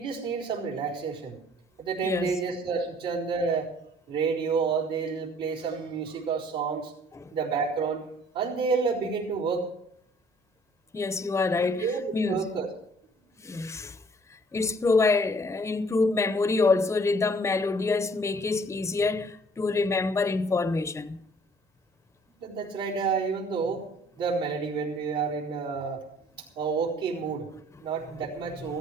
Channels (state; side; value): normal; both; correlation 0.57